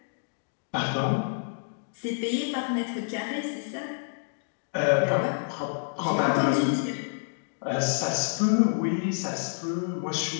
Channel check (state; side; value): silent; right; digital silence